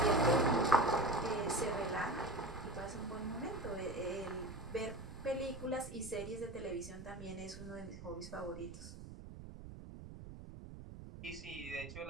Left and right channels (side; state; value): right; noise; rumble, 12 dB below the sound